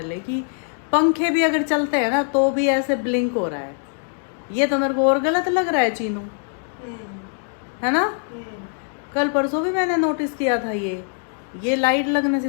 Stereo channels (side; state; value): right; silent; 57 dB below the other